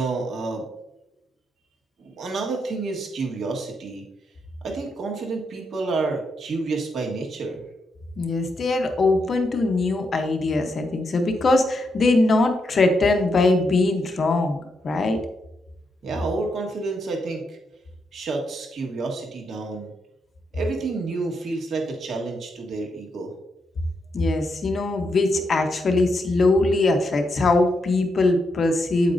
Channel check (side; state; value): both; normal; correlation 0.81